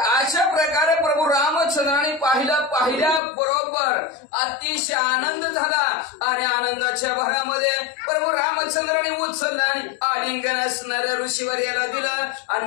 प्रकारे प्रभू रामचंद्राने पाहिल्या बरोबर अतिशय आनंद झाला आणि आनंदाच्या भरामध्ये प्रभू रामचंद्राने उचलला आणि आलिंगन असणाऱ्या ऋषीवर याला दिलं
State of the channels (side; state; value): right; drops out; at 3.2 s